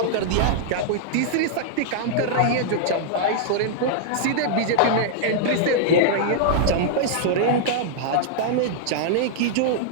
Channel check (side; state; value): both; different; correlation -0.01